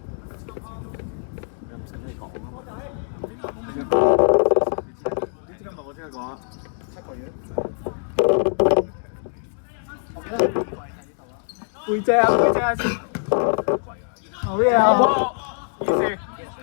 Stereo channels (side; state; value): right; silent; digital silence